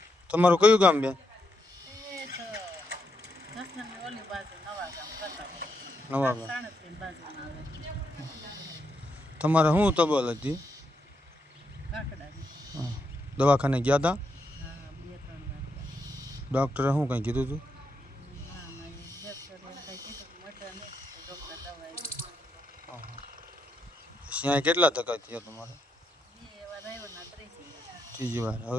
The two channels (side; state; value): both; normal; correlation 0.80